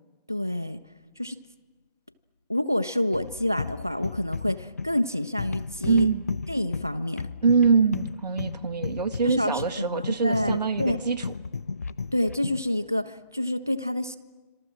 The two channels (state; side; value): inverted; both; correlation -0.76